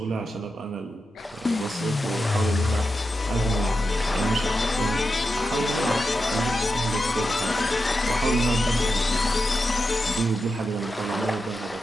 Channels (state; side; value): normal; both; correlation 0.89